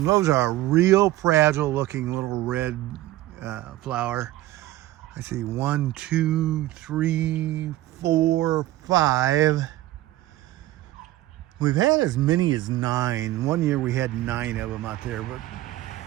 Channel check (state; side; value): quieter; left; 16.1 dB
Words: Those are a real fragile looking little red flower. I see 1, 2, 3, 4, 5. We've had as many as 9. One year we had 9 of them out there, but